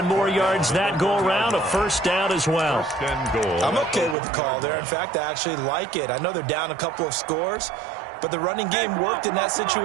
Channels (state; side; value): drops out; left; at 4.2 s